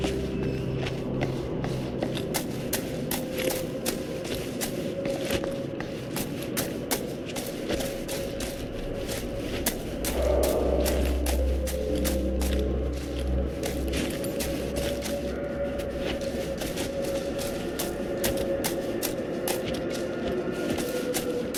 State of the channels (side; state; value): both; identical; correlation 1.00